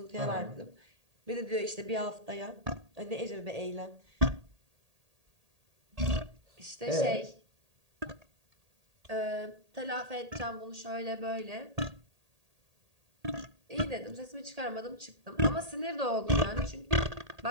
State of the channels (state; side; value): late; left; 1.8 ms